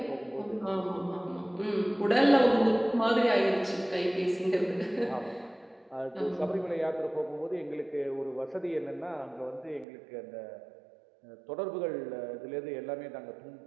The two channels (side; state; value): left; drops out; at 9.9 s